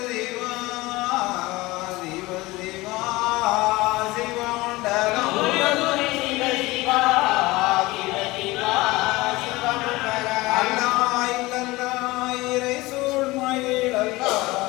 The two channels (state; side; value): quieter; right; 20.6 dB